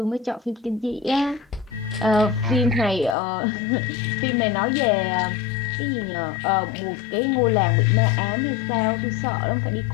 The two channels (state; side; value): drops out; right; at 3.2 s